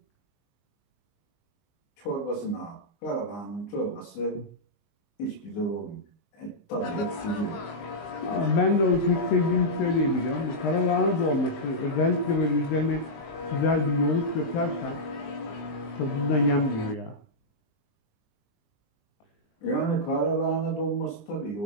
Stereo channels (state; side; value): late; right; 20 ms